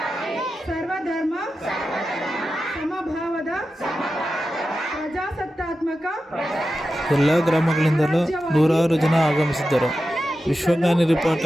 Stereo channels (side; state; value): both; normal; correlation 0.92